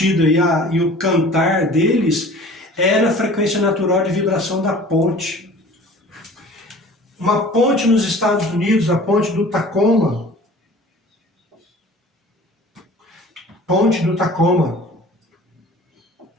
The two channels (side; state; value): both; normal; correlation 0.45